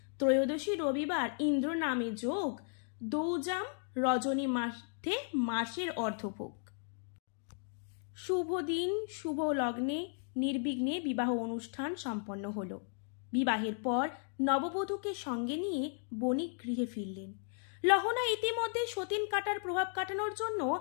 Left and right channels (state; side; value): silent; right; 54 dB below the other